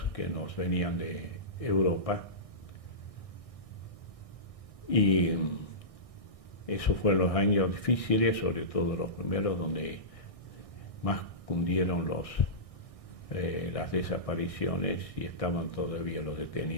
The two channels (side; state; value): right; late; 1.6 ms